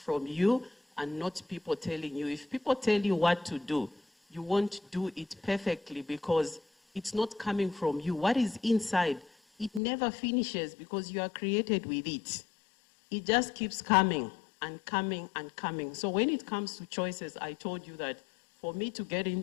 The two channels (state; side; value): drops out; right; at 9.8 s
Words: you and not people telling you. If people tell you what to do, you won't do it perfectly because it's not coming from you. What is inside, it never finishes because you are created with it. It just keeps coming and coming and coming. So when it comes to choices, I told you that for me to get